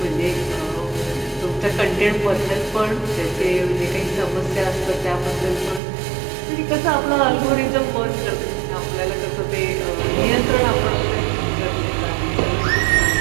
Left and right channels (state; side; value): drops out; left; at 5.8 s